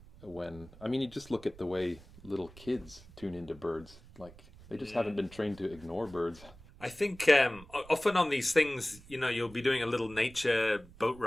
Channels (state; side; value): noise; right; rumble, 21 dB below the sound